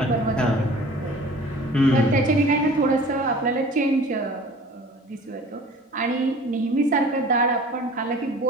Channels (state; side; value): normal; both; correlation 0.45